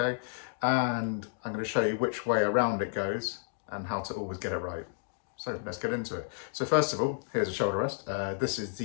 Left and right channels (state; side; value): silent; right; digital silence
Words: And I'm going to show you which way around it goes and how to always get it right. So let's get into it. So first of all, here's a shoulder rest. This is